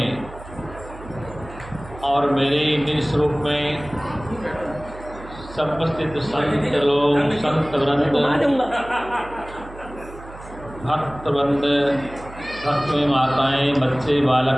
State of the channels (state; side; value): noise; right; hum, 16 dB below the sound